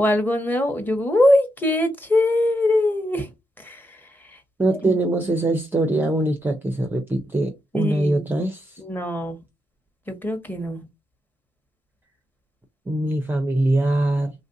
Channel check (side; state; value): both; normal; correlation 0.84